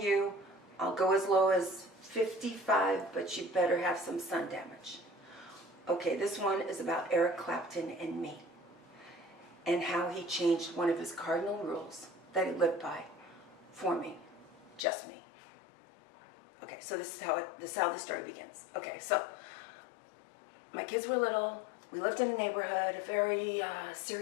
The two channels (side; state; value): right; drops out; at 14.8 s